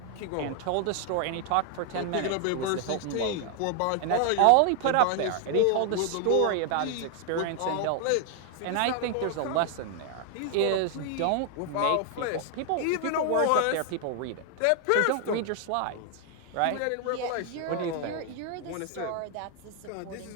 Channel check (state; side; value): different; both; correlation 0.00